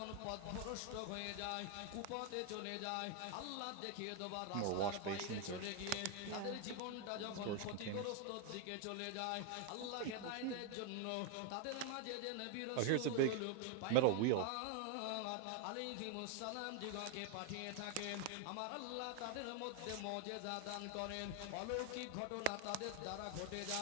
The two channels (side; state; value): both; different; correlation 0.01